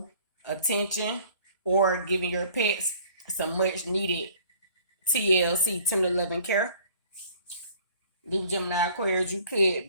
attention, or giving your pets some much needed TLC, tender loving care. Libra, Gemini, Aquarius, you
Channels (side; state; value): both; inverted; correlation -0.54